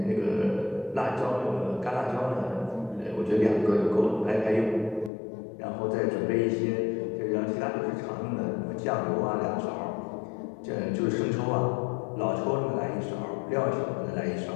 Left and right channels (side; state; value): right; drops out; at 5.1 s